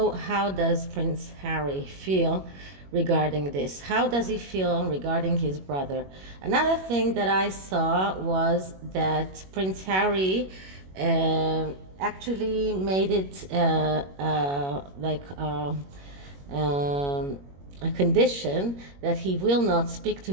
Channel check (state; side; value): late; left; 21 ms